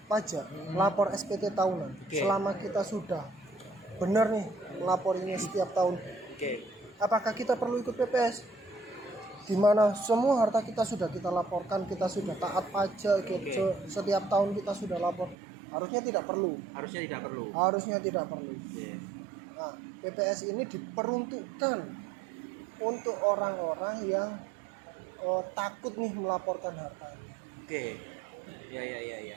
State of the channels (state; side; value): drops out; left; at 15.4 s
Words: pajak, lapor SPT tahunan, selama kita sudah benar nih lapor ini setiap tahun, apakah kita perlu ikut PPS? Di mana semua harta kita sudah kita laporkan, kita sudah taat pajak, setiap tahun kita sudah lapor. Harusnya tidak perlu. Harusnya tidak perlu. Nah, PPS ini diperuntukkan untuk orang-orang yang takut nih melaporkan hartanya.